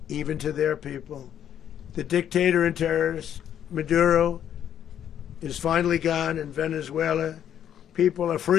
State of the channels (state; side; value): quieter; right; 9.8 dB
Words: even to their people. The dictator and terrorist, Maduro, is finally gone in Venezuela. People are